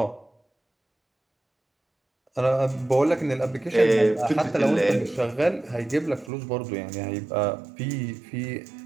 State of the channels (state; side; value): drops out; left; at 6.3 s